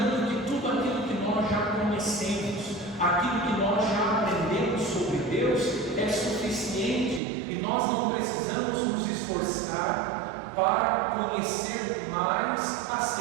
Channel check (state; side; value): drops out; left; at 7.2 s